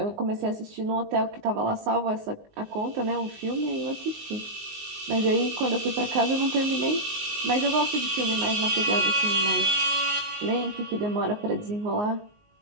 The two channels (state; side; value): late; left; 19 ms